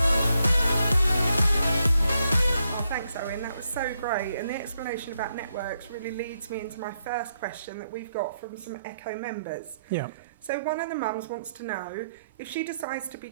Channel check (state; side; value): inverted; both; correlation -0.79